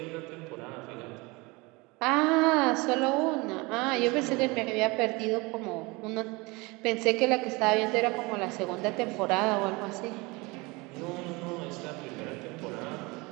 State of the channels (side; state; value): left; quieter; 25.1 dB